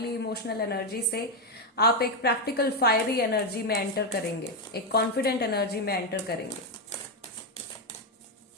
इमोशनल एनर्जी से आप एक प्रैक्टिकल फायरी एनर्जी में एंटर करेंगे, एक कॉन्फिडेंट एनर्जी में एंटर करेंगे।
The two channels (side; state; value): both; normal; correlation 0.05